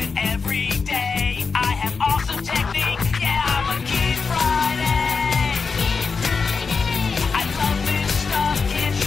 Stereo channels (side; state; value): right; quieter; 5.0 dB